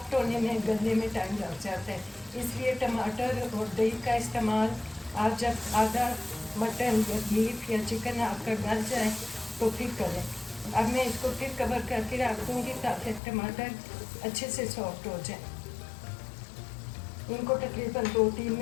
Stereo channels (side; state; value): right; drops out; at 13.2 s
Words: होने में, गलने में टाइम लग जाता है। इसलिए टमाटर और दही का इस्तेमाल आप जब आधा मटन या बीफ या चिकन आपका गल जाए तो फिर करें। अब मैं इसको फिर कवर करके रख दूँगी ताकि टमाटर अच्छे से सॉफ्ट हो जाए। इनको तकरीबन 2-3